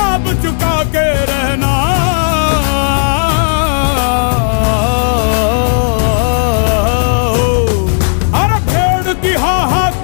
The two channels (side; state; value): right; silent; digital silence